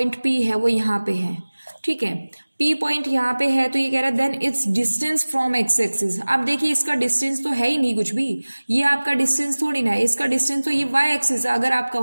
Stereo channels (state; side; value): inverted; both; correlation -1.00